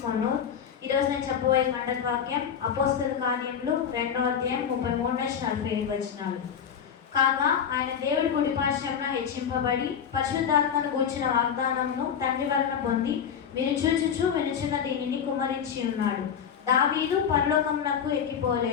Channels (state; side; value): quieter; right; 7.8 dB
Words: Ponnur. ఈరోజు నేను చెప్పబోయే కంటక వాక్యం అపోస్తల కార్యములు 2వ అధ్యాయం 33 నుంచి 47 వచనాలు. కాగా ఆయన దేవుడి కుడిపార్శ్వమున హెచ్చింపబడి పరిశుద్ధాత్మను గూర్చిన వాగ్దానమును తండ్రి వలన పొంది మీరు చూచుచు వినుచున్న దీనిని కుమ్మరించి ఉన్నాడు. దావీదు పరలోకమునకు